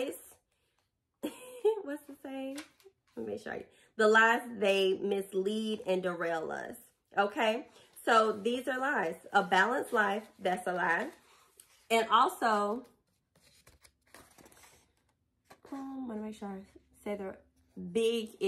What's the saying? Let me show you. The lies they mislead and derail us. Okay? So these are lies. A balanced life, that's a lie. And also, let me make sure I say big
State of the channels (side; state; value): both; identical; correlation 1.00